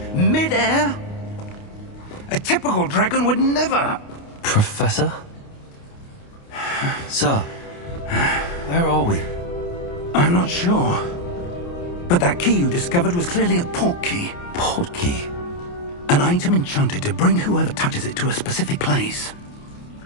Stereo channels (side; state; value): right; late; 29 ms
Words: mid-air? A typical dragon would never... Professor? Sir, where are we? I'm not sure. But that key you discovered was clearly a port key. Port key? An item enchanted to bring whoever touches it to a specific place.